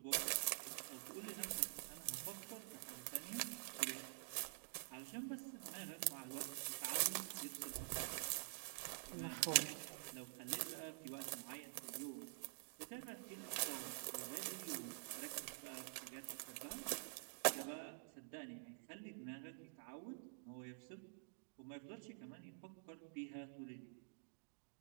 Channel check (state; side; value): silent; left; digital silence